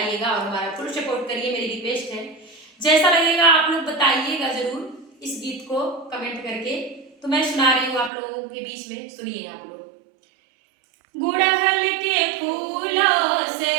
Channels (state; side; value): drops out; left; at 8.1 s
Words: और हमारा फुल सपोर्ट करिए, मेरी रिक्वेस्ट है। जैसा लगेगा आप लोग बताइएगा जरूर इस गीत को कमेंट करके। तो मैं सुना रही हूँ आप लोगों के बीच में, सुनिए आप लोग। गुड़हल के फूलों से